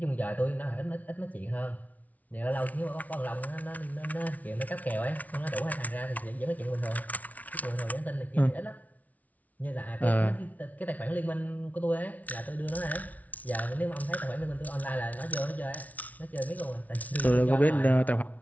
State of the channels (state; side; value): late; right; 0.072 ms